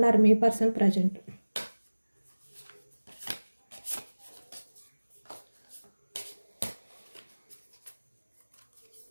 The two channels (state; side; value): inverted; both; correlation -1.00